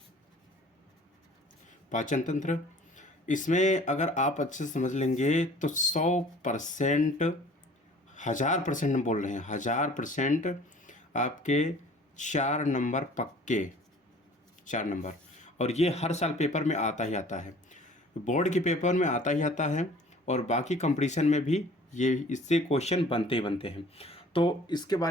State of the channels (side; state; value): both; normal; correlation 0.50